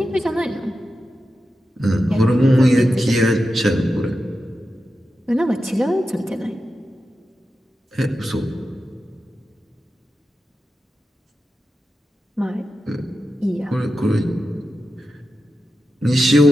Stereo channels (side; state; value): both; normal; correlation 0.91